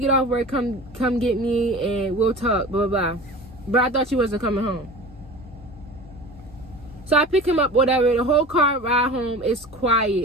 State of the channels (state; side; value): normal; both; correlation 0.36